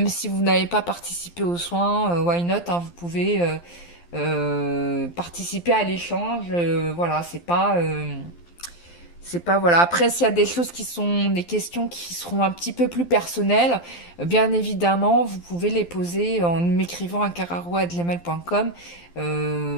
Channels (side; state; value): right; late; 12 ms